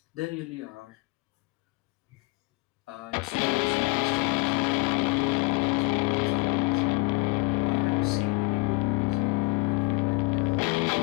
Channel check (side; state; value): right; quieter; 25.7 dB